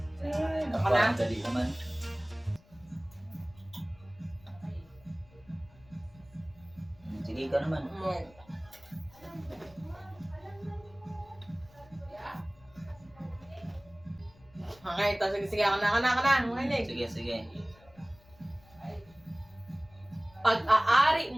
Ako na. napakadali naman. Sige ka naman. Okay, ito. Sige. Ako na. Makinig. Sige. Pag-aari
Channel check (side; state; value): left; noise; rumble, 26 dB below the sound